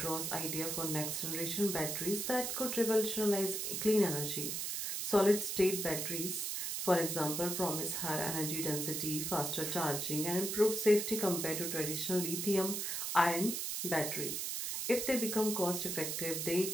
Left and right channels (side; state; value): right; noise; hiss, 2 dB below the sound